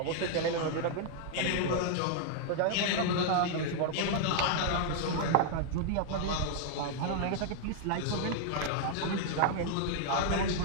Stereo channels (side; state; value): both; different; correlation 0.00